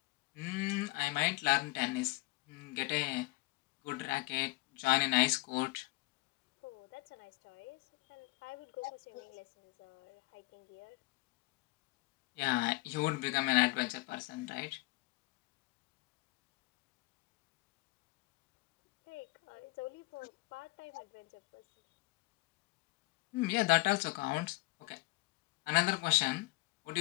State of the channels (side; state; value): right; quieter; 23.6 dB